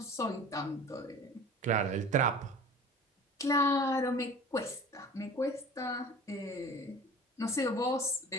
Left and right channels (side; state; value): both; normal; correlation 0.41